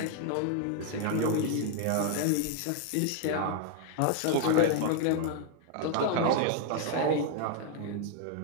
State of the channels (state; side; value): different; both; correlation 0.00